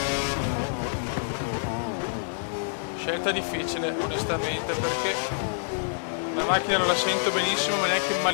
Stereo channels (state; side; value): silent; right; digital silence